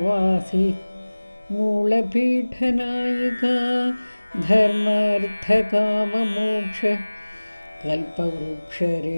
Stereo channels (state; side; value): inverted; both; correlation -1.00